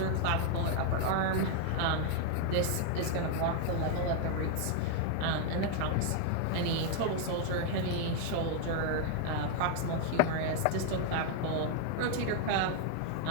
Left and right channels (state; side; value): different; both; correlation 0.00